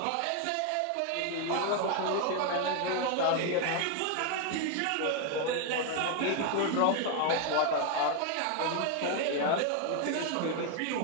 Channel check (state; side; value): different; both; correlation 0.01